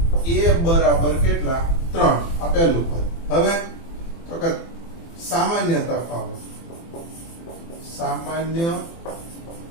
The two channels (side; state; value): right; late; 24 ms